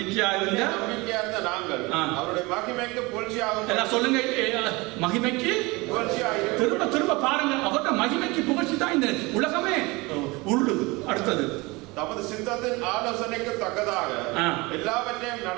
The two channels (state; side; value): quieter; left; 24.1 dB